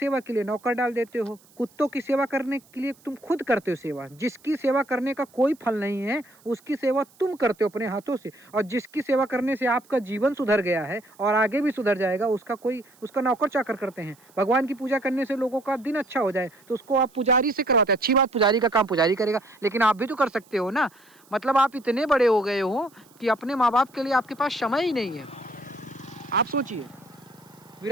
के लिए नौकर डाल देते हो, कुत्तों की सेवा करने के लिए तुम खुद करते हो सेवा। जिसकी सेवा करने का कोई फल नहीं है, उसकी सेवा तुम करते हो अपने हाथों से। और जिसकी सेवा करने से आपका जीवन सुधर गया है और आगे भी सुधर जाएगा, उसका नौकर चाकर करते हैं। भगवान की पूजा करने से लोगों का दिन अच्छा हो जाए तो उसको आप पुजारी से करवाते हैं। अच्छी बात, पुजारी का काम पुजारी करेगा, लेकिन आप भी तो कर सकते हो ना। मतलब आप इतने बड़े हो गए हो कि अपने माँ बाप के लिए आपके पास समय ही नहीं है। आप सोचिए,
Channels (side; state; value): right; noise; hiss, 29 dB below the sound